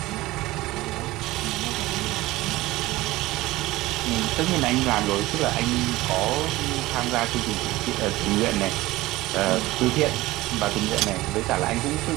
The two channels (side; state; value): left; quieter; 18.4 dB